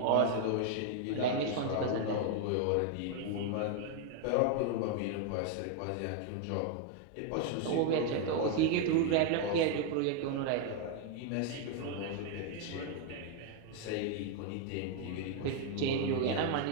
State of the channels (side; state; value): both; different; correlation 0.00